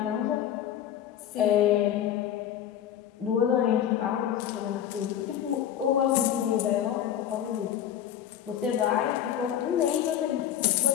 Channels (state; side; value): quieter; right; 10.3 dB